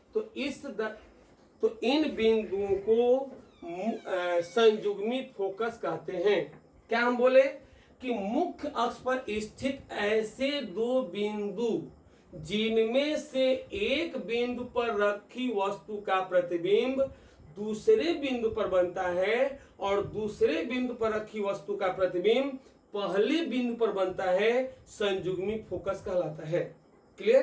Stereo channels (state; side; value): identical; both; correlation 1.00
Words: तो इन बिंदुओं को संजुग्मी फोकस कहते हैं। क्या हम बोले कि मुख्य अक्ष पर स्थित ऐसे दो बिंदु जिनमें से एक बिंदु पर रखी वस्तु का प्रतिबिंब दूसरे बिंदु पर बनता है और दूसरे बिंदु पर रखी वस्तु का प्रतिबिंब पहले बिंदु पर बनता है, संजुग्मी फोकस कहलाता है।